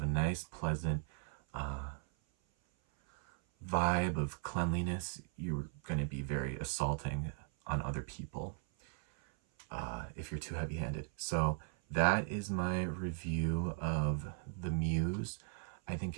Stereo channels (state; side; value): silent; left; 53 dB below the other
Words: a nice, pleasant vibe of cleanliness, you're going to be very assaulting on other people if you're too heavy-handed. So that is my review of the Muse. I think